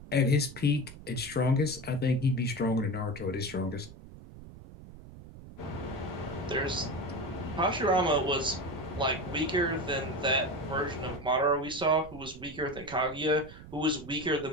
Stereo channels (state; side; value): noise; right; rumble, 16 dB below the sound